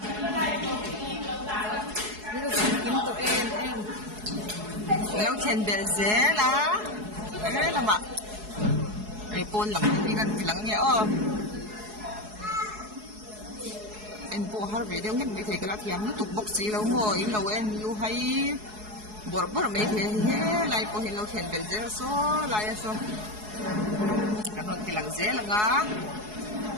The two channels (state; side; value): late; left; 4.7 ms